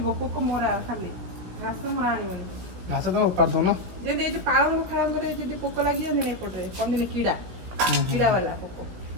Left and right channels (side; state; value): left; late; 17 ms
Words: ପୋକ ମରା ଖାଲି ଘାସ ମରା ଆଣିବନି ଘାସ ତ ଉପାଡ଼ି ଦଉନ ଯେମିତି ଏଇ ଯୋଉ ପାଳଙ୍ଗ ଫାଳଙ୍ଗରେ ଯଦି ପୋକ ଲାଗିଯାନ୍ତି ନା ଏପଟରେ କହନ୍ତିନି କିଡ଼ା କିଡ଼ା ବାଲା ପୋକ